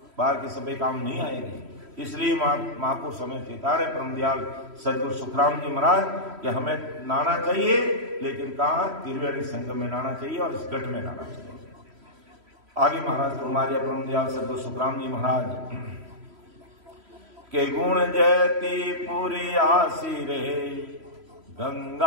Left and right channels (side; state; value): left; late; 3.1 ms